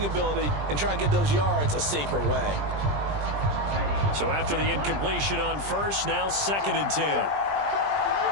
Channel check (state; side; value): late; left; 20 ms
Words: ability and try and get those yards a safer way. So after the incompletion on first, now 2nd and 10.